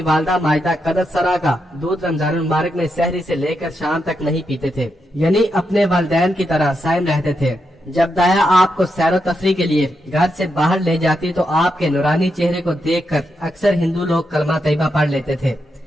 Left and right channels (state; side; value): normal; both; correlation 0.84